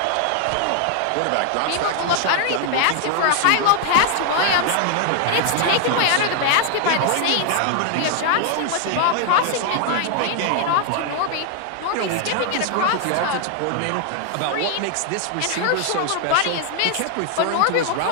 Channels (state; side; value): different; both; correlation 0.00